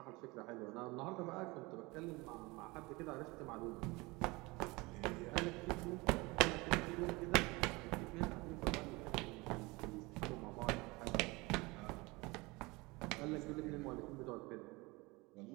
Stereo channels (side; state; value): left; quieter; 24.0 dB